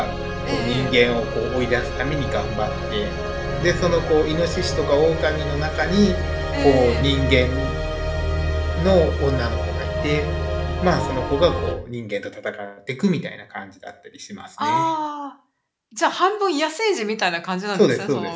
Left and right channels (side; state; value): both; identical; correlation 1.00